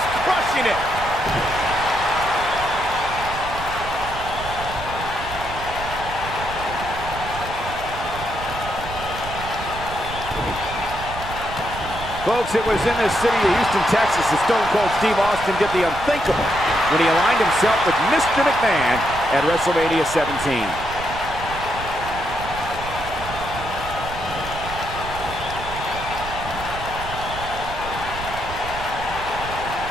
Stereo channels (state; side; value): noise; right; rumble, 10 dB below the sound